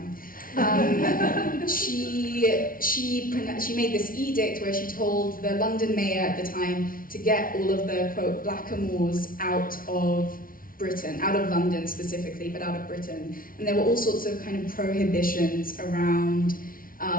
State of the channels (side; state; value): right; late; 0.41 ms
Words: she made this edict where she told the London mayor at the time to get all of the, quote, blackamoors out of Britain, out of London specifically, but out of Britain. And there were all sorts of kind of prohibitions around